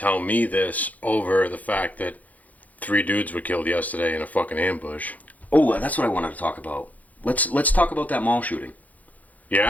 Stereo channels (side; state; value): right; late; 0.077 ms